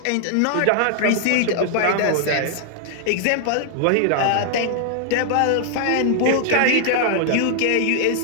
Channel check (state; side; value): different; both; correlation 0.00